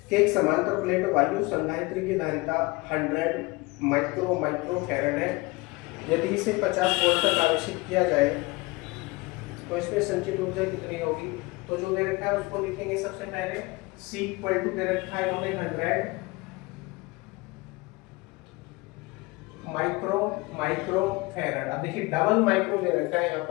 कि एक समांतर प्लेट वायु संधारित्र की धारिता 100 माइक्रो फैरड है। यदि इसे 50 वोल्ट तक आवेशित किया जाए तो इसमें संचित ऊर्जा कितनी होगी। तो जो दे रखा है उसको लिखेंगे सबसे पहले। C इक्वल टू दे रखा है इन्होंने 100 माइक्रो फैरड। अब देखिए डबल माइक्रो दे रखा है यहाँ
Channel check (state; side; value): quieter; right; 23.7 dB